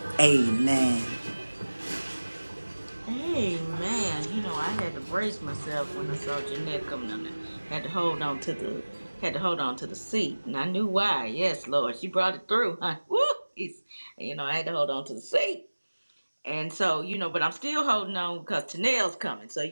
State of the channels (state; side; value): inverted; both; correlation -1.00